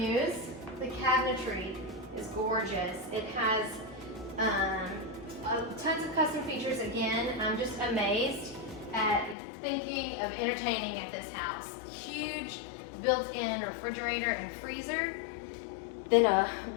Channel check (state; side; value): drops out; right; at 9.3 s